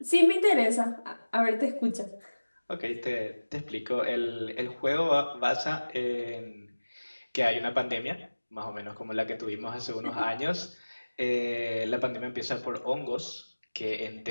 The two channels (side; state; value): both; inverted; correlation -1.00